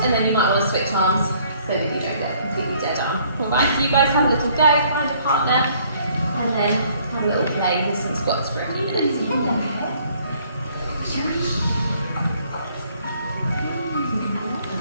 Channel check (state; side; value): inverted; both; correlation -0.62